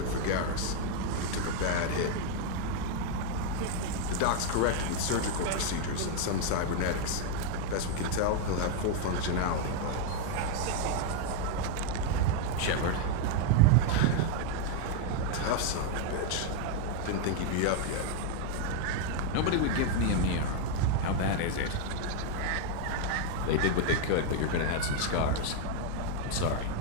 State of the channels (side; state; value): both; different; correlation 0.01